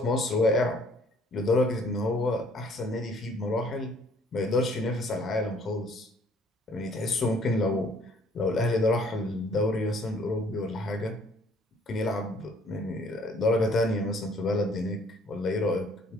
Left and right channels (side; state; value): both; normal; correlation 0.60